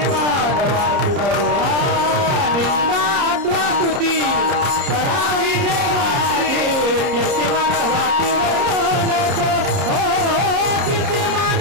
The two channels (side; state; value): left; late; 30 ms